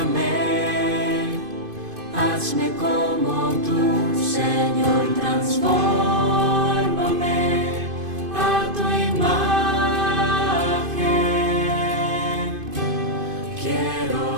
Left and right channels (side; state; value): left; late; 2.5 ms